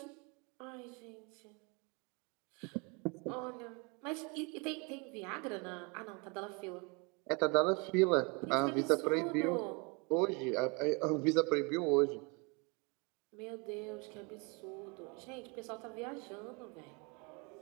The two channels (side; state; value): left; quieter; 30.1 dB